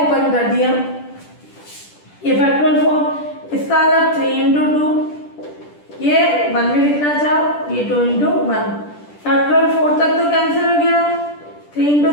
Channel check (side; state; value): right; late; 10 ms